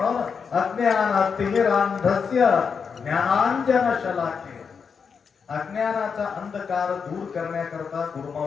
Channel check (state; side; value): quieter; right; 6.0 dB